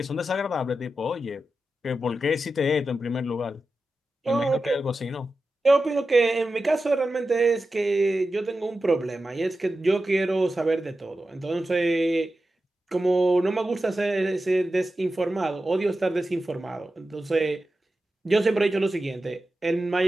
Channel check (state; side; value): normal; both; correlation 0.92